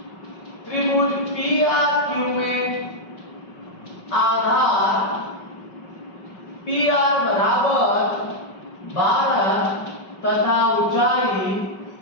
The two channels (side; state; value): right; late; 5.3 ms